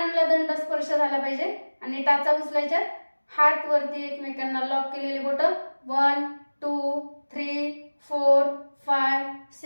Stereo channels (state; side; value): inverted; both; correlation -1.00